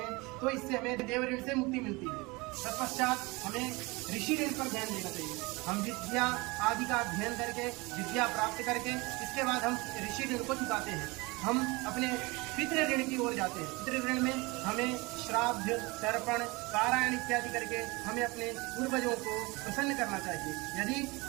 तो इससे हमें देव ऋण से मुक्ति मिलती है। तत्पश्चात हमें ऋषि ऋण पर ध्यान देना चाहिए। हम विद्या आदि का अध्ययन करके, विद्या प्राप्त करके, इसके बाद हम ऋषि ऋण को चुकाते हैं। हम अपने पितृ ऋण की ओर जाते हैं। पितृ ऋण में हमें श्राद्ध, तर्पण, पारायण इत्यादि करके हमें अपने पूर्वजों को प्रसन्न करना चाहिए। यदि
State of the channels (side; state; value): left; quieter; 24.9 dB